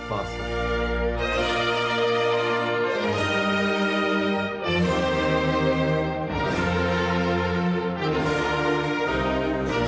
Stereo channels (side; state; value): both; identical; correlation 1.00